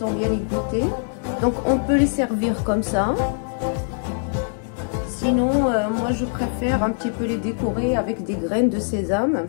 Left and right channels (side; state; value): right; silent; digital silence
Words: bien égouttées. Donc on peut les servir comme ça. Sinon, moi je préfère un petit peu les décorer avec des graines de sésame.